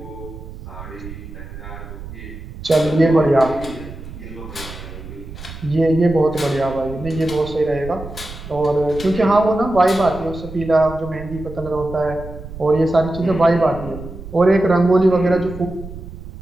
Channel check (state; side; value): noise; right; rumble, 13 dB below the sound